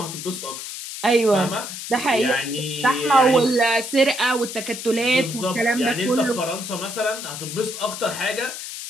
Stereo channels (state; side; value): noise; left; hiss, 9 dB below the sound